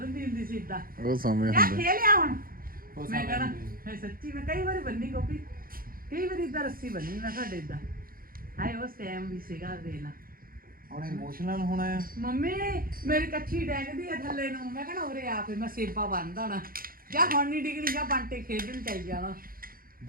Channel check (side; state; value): left; late; 0.42 ms